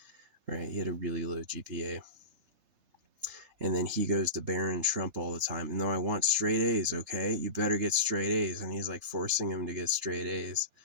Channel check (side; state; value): left; late; 3.3 ms